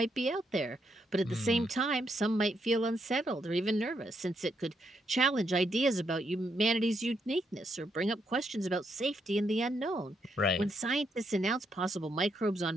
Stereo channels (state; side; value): normal; both; correlation 0.78